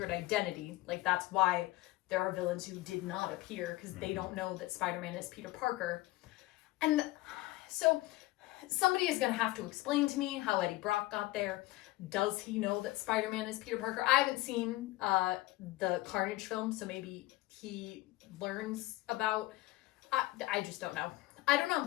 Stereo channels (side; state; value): right; quieter; 18.7 dB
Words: identity. Like, that's why there are villains who did not appear, because they don't know that Spider-Man is Peter Parker. And so somebody is going to have to explain to me how Eddie Brock got there. Does he know that Spider-Man is Peter Parker? I haven't seen the Carnage film, so maybe he learns about... I just don't know. I don't